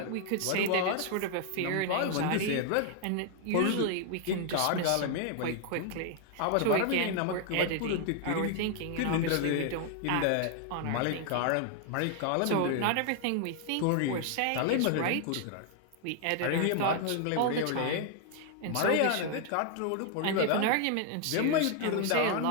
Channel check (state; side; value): different; both; correlation 0.00